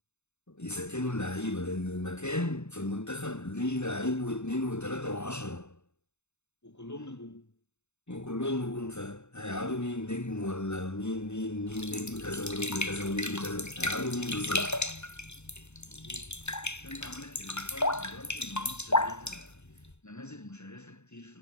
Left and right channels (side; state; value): right; late; 0.82 ms